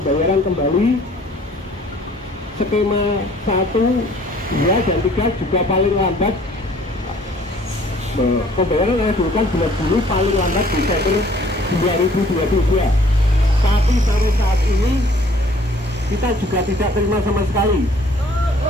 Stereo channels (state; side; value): normal; both; correlation 0.56